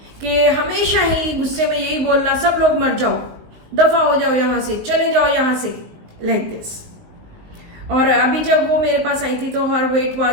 कि हमेशा ही गुस्से में यही बोलना, सब लोग मर जाओ, दफा हो जाओ यहाँ से, चले जाओ यहाँ से, लाइक दिस। और अभी जब वो मेरे पास आई थी तो हर वेट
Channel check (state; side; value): late; left; 19 ms